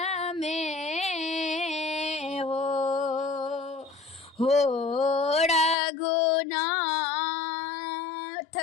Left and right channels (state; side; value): drops out; right; at 5.8 s